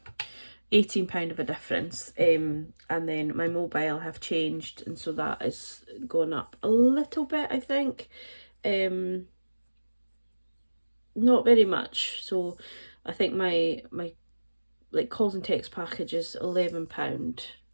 £18 of a difference. And then my mobile have changed, and so that is going up a little bit, I think. Not very much. So I think my like calls and text package is £11.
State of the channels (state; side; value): inverted; both; correlation -1.00